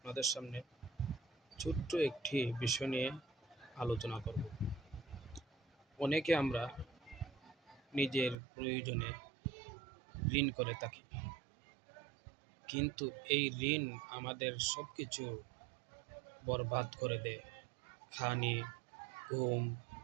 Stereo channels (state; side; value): drops out; left; at 8.3 s